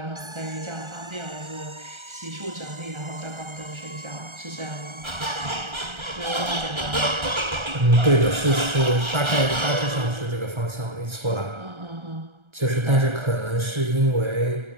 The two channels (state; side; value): late; left; 1.3 ms